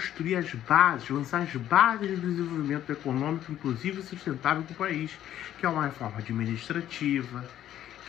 as bases, lançar as bases do desenvolvimento econômico, inclusive sustentável para o país, que é uma reforma administrativa,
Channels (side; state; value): right; quieter; 11.7 dB